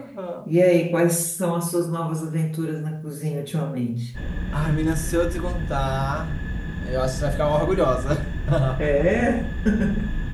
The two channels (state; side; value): identical; both; correlation 1.00